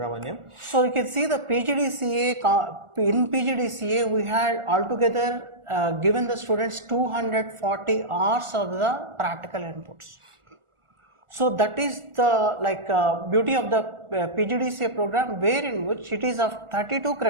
So you can see the PGDCA, in PGDCA we had altogether given the students 240 hours of the practical inputs. So that is the beauty of the PGDCA program, wherein which it is of 32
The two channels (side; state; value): left; late; 1.4 ms